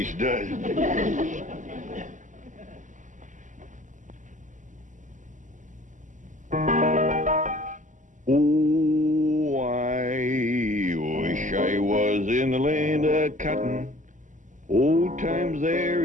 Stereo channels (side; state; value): left; late; 0.37 ms